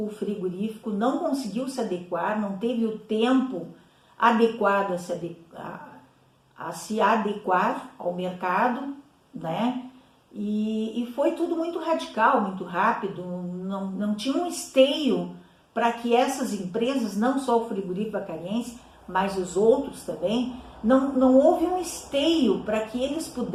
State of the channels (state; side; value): identical; both; correlation 1.00